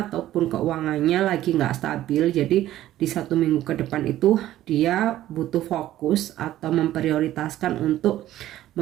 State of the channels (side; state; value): left; quieter; 13.7 dB